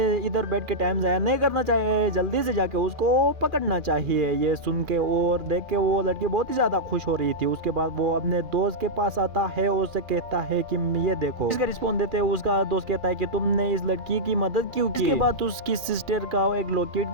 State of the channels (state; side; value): late; left; 2.4 ms